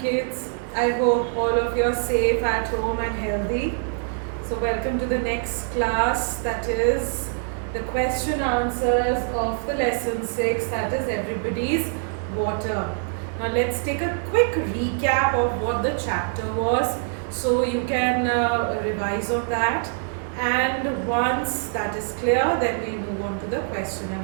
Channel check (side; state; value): left; silent; 57 dB below the other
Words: I hope all of you are safe at home and healthy. So, welcome to the next class, that is the question answers of the lesson 6, that is everybody's water. Now, let's take a quick recap of what the chapter was so you can revise on that. And once that is clear, then we'll move on to the question and